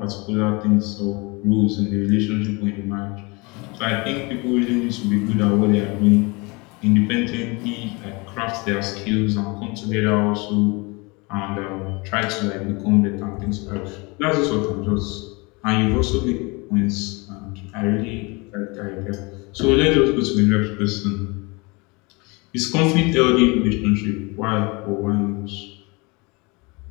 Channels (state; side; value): quieter; right; 27.3 dB